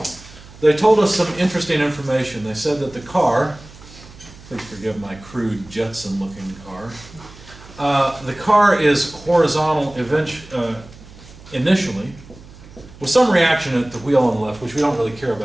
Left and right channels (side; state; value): right; noise; hum, 20 dB below the sound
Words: They told us some interesting information. They said that the car, please forgive my crude Jetson-looking car, the car is horizontal initially, with some reaction at the wheel on the left, which we don't really care